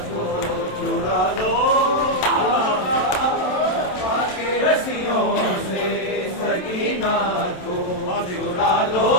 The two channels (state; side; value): late; right; 27 ms